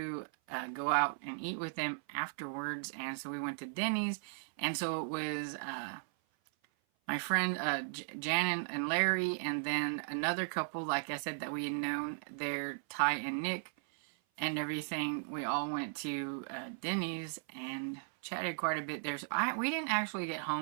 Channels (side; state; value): left; silent; 53 dB below the other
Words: go out and eat with them afterwards, and so we went to Denny's, and so it was my friend Jan and Larry, and then another couple, like I said, that we had known, they're Ty and Nick and everything. We all went to Denny's and chatted quite a bit there. So we didn't actually get